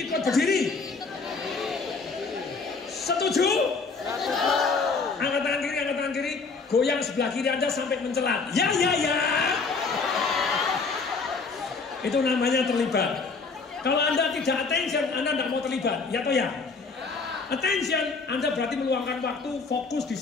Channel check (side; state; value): right; quieter; 4.4 dB